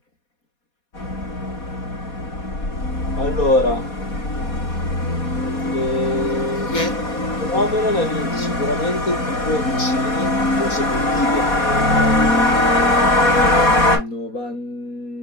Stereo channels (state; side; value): late; right; 4.2 ms